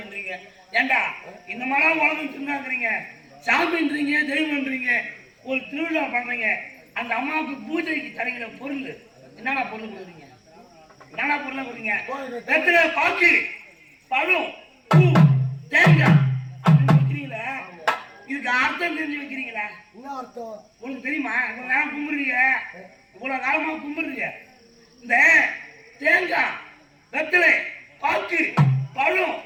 ஏண்டா இந்த மாதிரி உலகம் சொன்னாங்கிறீங்க, சாமின்றீங்க, தெய்வம்ன்றீங்க. ஒரு திருவிழா பண்றீங்க, அந்த அம்மாவுக்கு பூஜைக்கு தரங்கிற பொருள் என்னடா பொருள் கொடுக்குறீங்க? என்னடா பொருளை கொடுங்க? வெத்தலை, பாக்கு, பழம், பூ, தேங்காய் அப்படின்னு வைக்கிறீங்களா? இதுக்கு அர்த்தம் தெரிஞ்சு வைக்கிறீங்களா? உங்களுக்கு தெரியுமா? இவ்வளவு நேரம் கும்பிடுறீங்க, இவ்வளவு காலமா கும்பிடுறீங்க. இந்த தேங்காய், வெத்தலை, பாக்கு, பழம்,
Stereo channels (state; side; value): identical; both; correlation 1.00